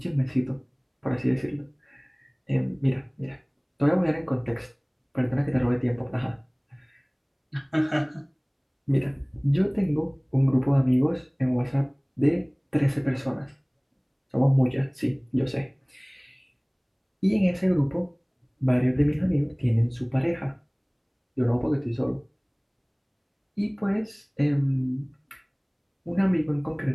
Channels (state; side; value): identical; both; correlation 1.00